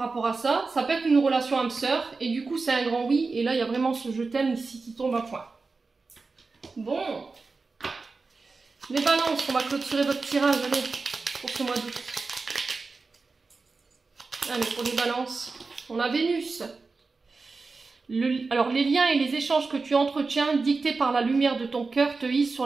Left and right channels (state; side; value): quieter; left; 4.1 dB